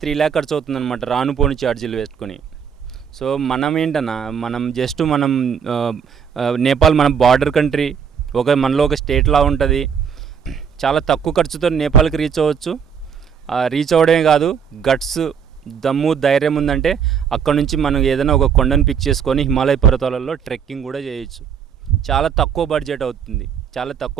3 lakh ఖర్చు అవుతుంది అనమాట, రాను పోని ఛార్జీలు వేసుకొని. సో మనం ఏంటన్నా, మనం నేపాల్ మన బార్డర్ కంట్రీ, మనలో ఒక స్టేట్లా ఉంటుంది. చాలా తక్కువ ఖర్చుతో నేపాల్కి రీచ్ అవ్వచ్చు. రీచ్ అవ్వడమే కాదు, గట్స్, దమ్ము, ధైర్యం ఉందంటే అక్కడ నుంచి మనం ఏదైనా ఒక కొండను పిక్ చేసుకొని హిమాలయ పర్వతాలలో ట్రెక్కింగ్ కూడా చేయొచ్చు. చాలా తక్కువ బడ్జెట్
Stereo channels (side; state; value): left; quieter; 7.3 dB